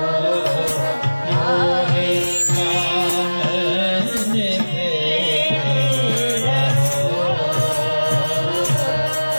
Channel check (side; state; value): both; inverted; correlation -1.00